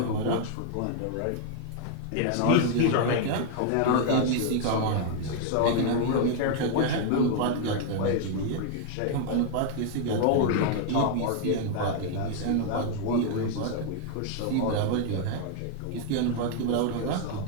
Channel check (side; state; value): both; different; correlation 0.00